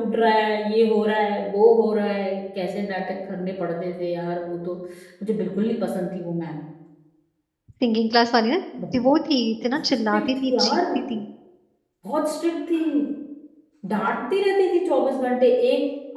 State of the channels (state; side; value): identical; both; correlation 1.00